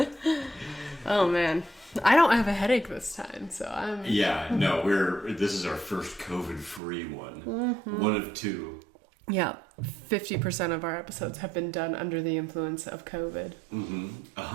Oh man. I don't have a headache this time, so I'm... Yeah, no, this is our first COVID-free one. Mm-hmm. One of two. Yeah, 50% of our episodes have been done under the influence of COVID.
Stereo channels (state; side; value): drops out; left; at 6.8 s